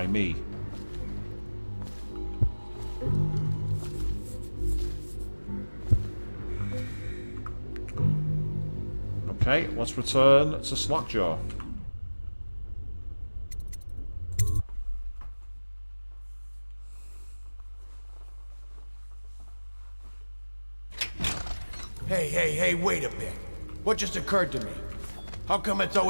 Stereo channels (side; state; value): both; inverted; correlation -1.00